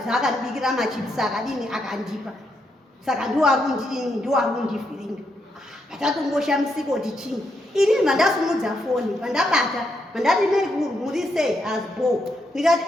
akandibikira machipisi akadini akandipa. Saka ndiwo arikundivhiringa. Patatongoshamisika kuti chini. Inini mandasimudza foni pandabata mandati neikuru muri sei azbo. Ndikati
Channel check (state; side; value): normal; both; correlation 0.79